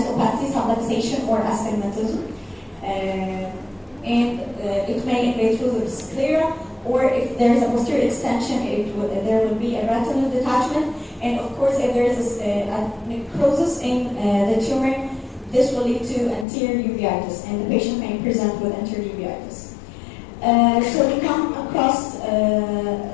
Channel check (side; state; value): right; drops out; at 16.4 s